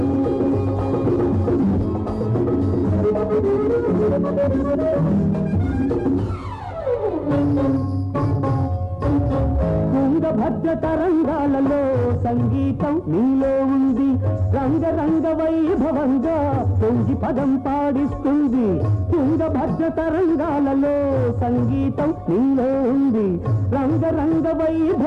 తుంగభద్ర తరంగాలలో సంగీతం నీలో ఉంది, రంగరంగ వైభవంగా పొంగి పదం పాడిస్తుంది. తుంగభద్ర తరంగాలలో సంగీతం నీలో ఉంది, రంగరంగ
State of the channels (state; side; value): identical; both; correlation 1.00